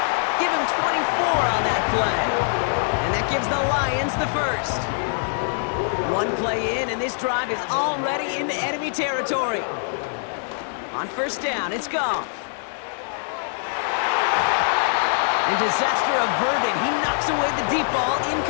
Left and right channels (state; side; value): silent; right; 63 dB below the other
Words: Give him 24 on that play. And that gives the Lions the first. One play in, and this drive is already into enemy territory. On first down, it's Goff. And disaster averted. He knocks away the deep ball,